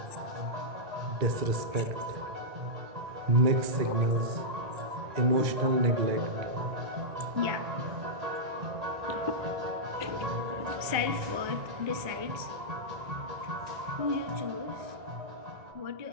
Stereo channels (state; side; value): late; left; 1.3 ms